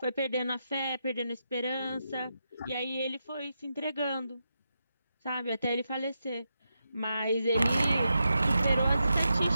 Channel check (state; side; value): inverted; both; correlation -0.86